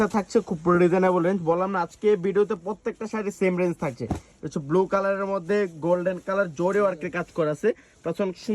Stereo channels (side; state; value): both; identical; correlation 1.00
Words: থাকছে খুব রিজনেবল রেঞ্জ। বললাম না, আজকে ভিডিওতে প্রত্যেকটা শাড়ি সেম রেঞ্জ থাকছে। হচ্ছে ব্লু কালারের মধ্যে গোল্ডেন কালার জোরে ওয়ার্কের কাজ করা আছে, প্লাস অনেক